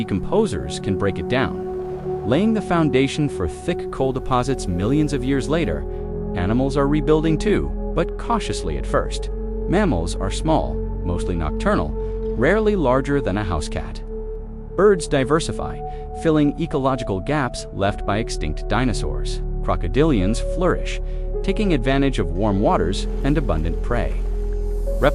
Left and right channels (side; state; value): both; identical; correlation 1.00